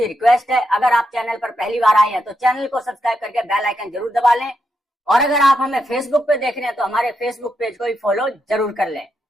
रिक्वेस्ट है, अगर आप चैनल पर पहली बार आए हैं तो चैनल को सब्सक्राइब करके बेल आइकन जरूर दबा लें, और अगर आप हमें फेसबुक पे देख रहे हैं तो हमारे फेसबुक पेज को भी फॉलो जरूर कर लें।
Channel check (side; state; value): both; normal; correlation 0.83